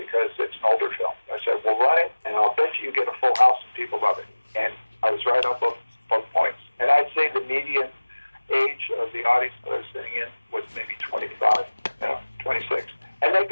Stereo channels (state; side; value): inverted; both; correlation -1.00